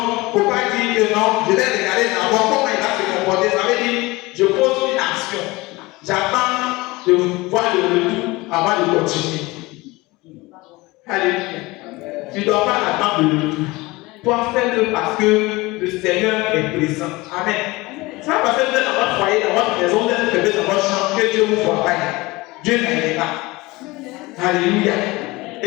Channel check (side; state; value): right; quieter; 21.9 dB